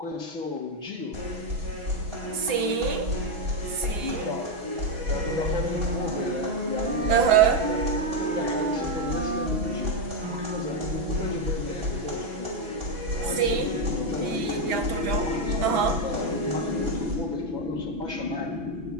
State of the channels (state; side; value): late; left; 6.1 ms